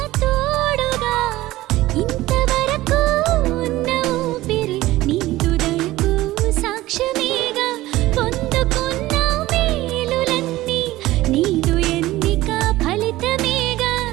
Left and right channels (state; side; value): quieter; left; 17.1 dB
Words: తోడుగా ఇంతవరకు ఉన్న ఊపిరి నీదు దయకు సాక్ష్యమేగా పొందుకున్న మేలులన్నీ నీదు ఎన్నిక ఫలితమేగా